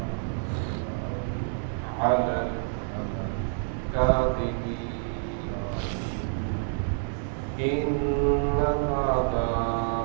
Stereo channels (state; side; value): silent; left; 56 dB below the other